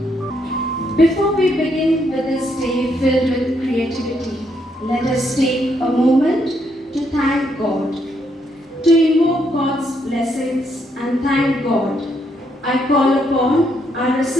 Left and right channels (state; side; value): normal; both; correlation 0.75